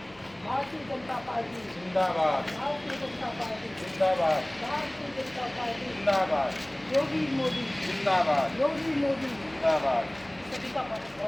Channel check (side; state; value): left; noise; hum, 27 dB below the sound